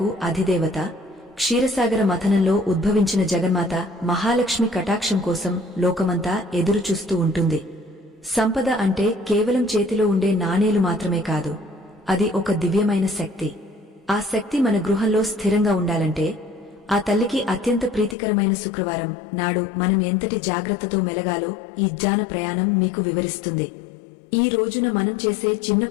అధిదేవత, క్షీరసాగర మథనంలో ఉద్భవించిన జగన్మాత మహాలక్ష్మి కటాక్షం కోసం లోకమంతా ఎదురుచూస్తూ ఉంటుంది. సంపద అంటే కేవలం చేతిలో ఉండే నాణేలు మాత్రమే కాదు, అది ఒక దివ్యమైన శక్తి. ఆ శక్తి మన గృహంలో స్థిరంగా ఉండాలంటే ఆ తల్లికి అత్యంత ప్రీతికరమైన శుక్రవారం నాడు మనం ఎంతటి జాగ్రత్తతో మెలగాలో ఈ జ్ఞాన ప్రయాణం మీకు వివరిస్తుంది. ఈ రోజున మనం చేసే చిన్న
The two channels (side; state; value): right; drops out; at 18.2 s